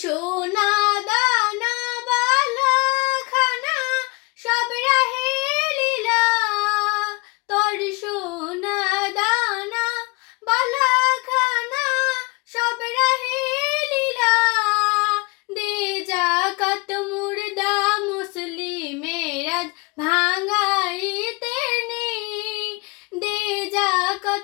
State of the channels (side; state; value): right; quieter; 28.3 dB